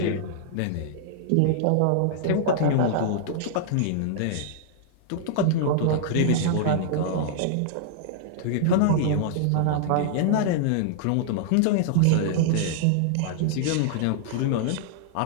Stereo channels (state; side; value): different; both; correlation -0.01